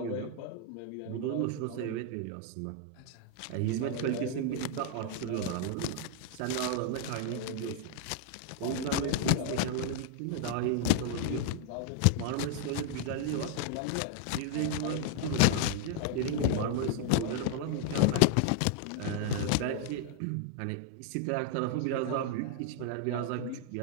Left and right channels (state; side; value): different; both; correlation -0.01